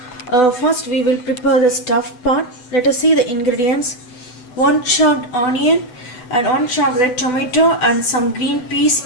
First we will prepare the stuffed part. Let us see the ingredients. 1 chopped onion and 1 chopped red tomato and some green peas.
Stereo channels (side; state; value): right; late; 8.0 ms